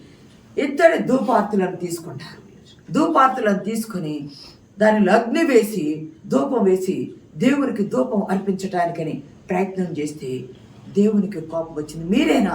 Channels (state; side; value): identical; both; correlation 1.00